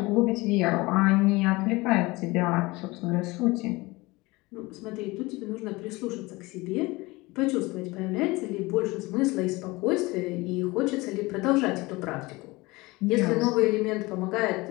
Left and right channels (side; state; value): right; quieter; 22.5 dB